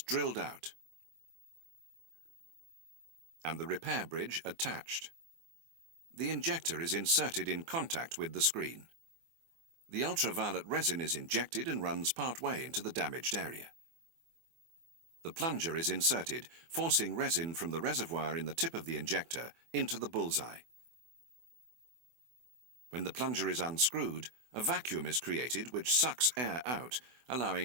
drilled out and the repair bridge attached. The injector is inserted in contact with the screen. The ultraviolet resin is injected and runs part way into the damaged area. The plunger is inserted, forcing resin from the reservoir in the tip of the injector into the bullseye. When the plunger is unscrewed, a vacuum is created which sucks air out,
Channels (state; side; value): late; left; 24 ms